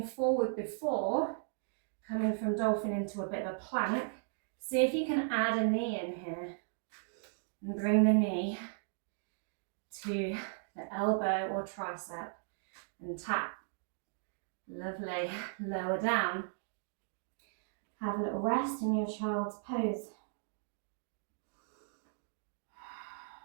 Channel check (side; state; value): left; silent; digital silence